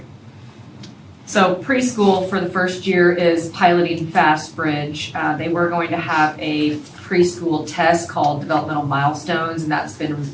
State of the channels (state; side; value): identical; both; correlation 1.00